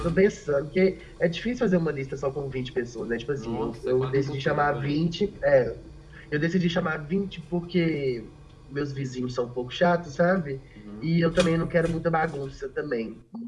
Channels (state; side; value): identical; both; correlation 1.00